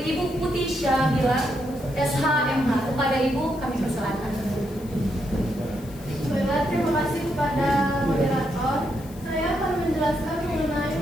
Putih Syabila, SHMH. Kepada Ibu kami persilakan. Baiklah, terima kasih kepada moderator. Saya akan menjelaskan mengenai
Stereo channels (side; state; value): left; noise; hiss, 22 dB below the sound